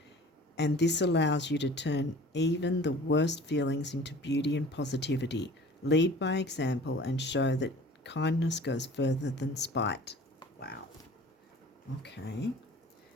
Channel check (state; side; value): normal; both; correlation 0.45